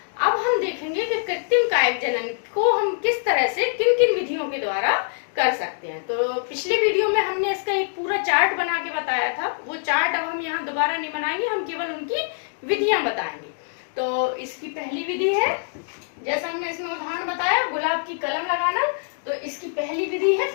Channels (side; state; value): right; silent; digital silence